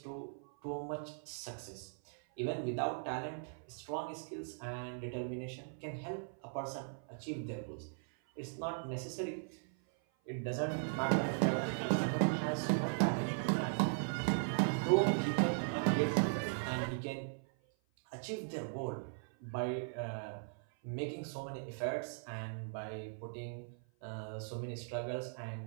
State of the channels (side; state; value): left; silent; 52 dB below the other